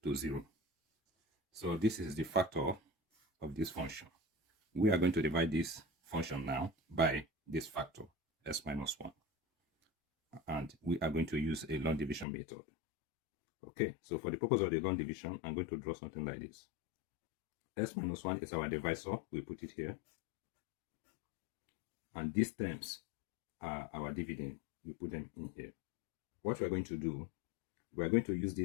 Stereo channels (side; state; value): right; drops out; at 12.2 s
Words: to 0. So this is the factor of this function. We are going to divide this function now by this factor, s minus 1. And we are going to use a long division method. Okay, so for the purpose of the long division, I'm going to draw something like this. S minus 1 is our divisor. We put it here. And these terms are our dividend. We put them in here. What we are going to do, we are going to use